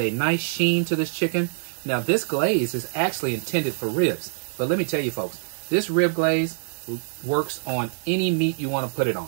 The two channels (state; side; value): silent; left; digital silence